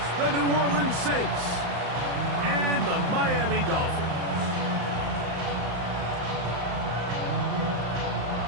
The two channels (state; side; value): late; left; 35 ms